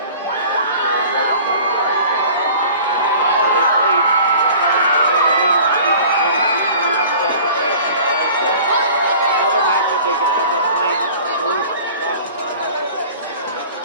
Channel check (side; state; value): both; inverted; correlation -0.45